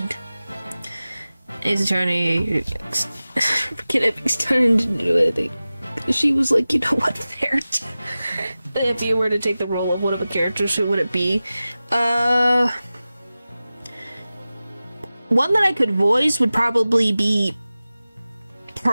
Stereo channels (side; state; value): both; inverted; correlation -0.96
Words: His attorney He's turning to do anything. She was like, you know what, there. If you were to take the role of one of the characters, who would it be? One that I could voice would probably be